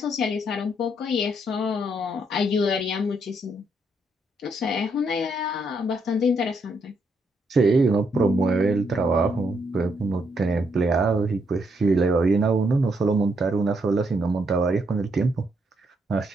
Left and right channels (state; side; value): normal; both; correlation 0.75